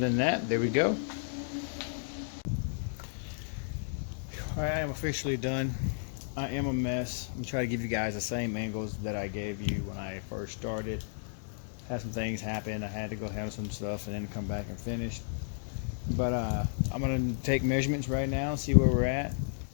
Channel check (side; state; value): right; silent; digital silence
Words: that, there we go. Alright, I am officially done. I am a mess. I'm trying to give you guys the same angles that I gave you when I first started. Had some things happen. I had to go handle some stuff and then come back and finish. But I'm going to take measurements right now and see where we're at.